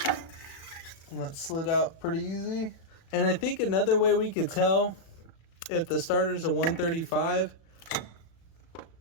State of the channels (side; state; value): right; late; 36 ms